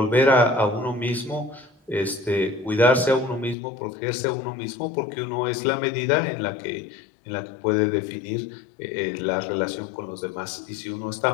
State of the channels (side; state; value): right; drops out; at 3.6 s